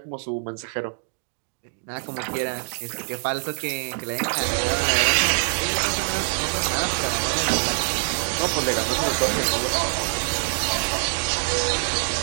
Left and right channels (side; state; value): left; silent; digital silence